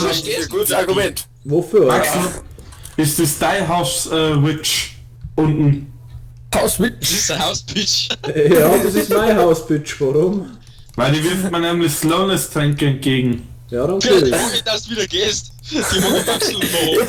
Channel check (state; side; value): identical; both; correlation 1.00